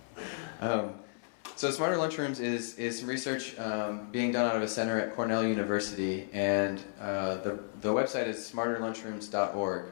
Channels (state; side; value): silent; right; 56 dB below the other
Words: So Smarter Lunchrooms is some research being done out of a center at Cornell University, and the website is smarterlunchrooms.org,